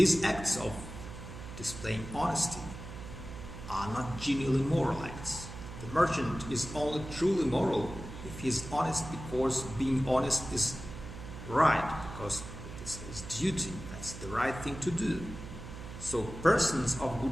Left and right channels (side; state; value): right; noise; hum, 11 dB below the sound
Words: acts of displaying honesty are not genuinely moral acts. The merchant is only truly moral if he is honest because being honest is right, because it is his duty. That's the right thing to do. So persons of